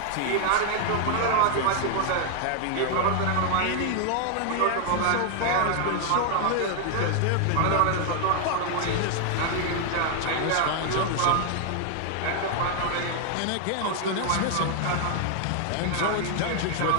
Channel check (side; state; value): both; different; correlation 0.00